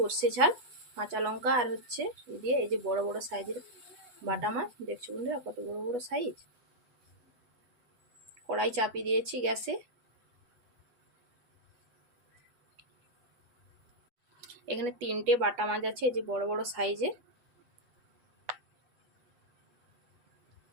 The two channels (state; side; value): late; left; 8.2 ms